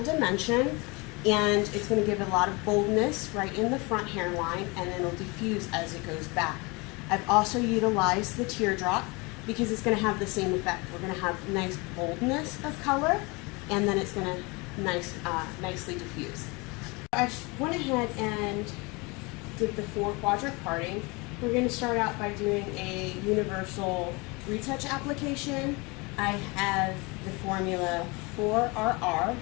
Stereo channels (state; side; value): quieter; right; 26.9 dB